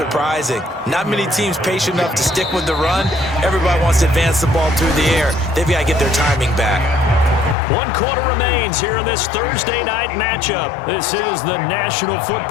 Not many teams patient enough to stick with the run. Everybody wants to advance the ball through the air. They've got to get their timing back. 1 quarter remains here in this Thursday night matchup. This is the National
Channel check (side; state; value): right; drops out; at 7.6 s